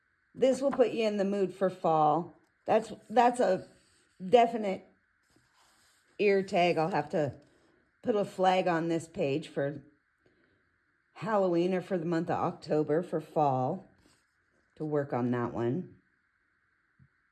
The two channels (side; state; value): both; identical; correlation 1.00